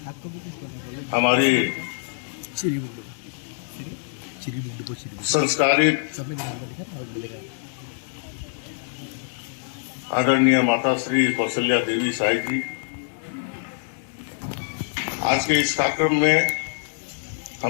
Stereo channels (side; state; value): right; silent; digital silence